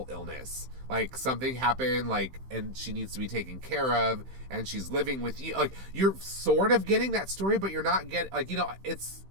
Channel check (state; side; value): late; left; 15 ms